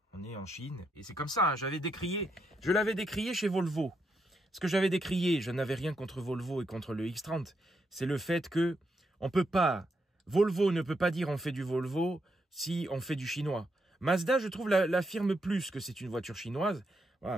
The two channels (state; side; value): normal; both; correlation 0.80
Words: on est en Chine. Et c'est comme ça, hein, je l'avais décrié chez Volvo. Ce que j'avais décrié, je n'avais rien contre Volvo et contre le X30. C'est le fait que on peut pas, Volvo ne peut pas dire on fait du Volvo si on fait du chinois. Mazda, je trouve, l'affirme plus que c'est une voiture chinoise. Voilà,